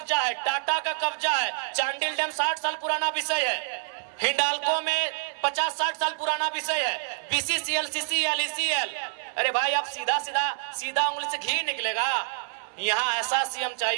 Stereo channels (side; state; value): left; silent; 60 dB below the other